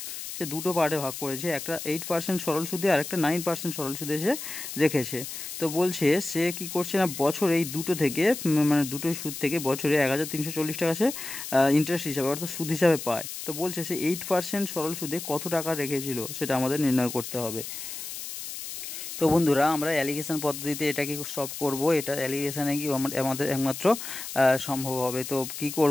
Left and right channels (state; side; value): noise; left; hiss, 8 dB below the sound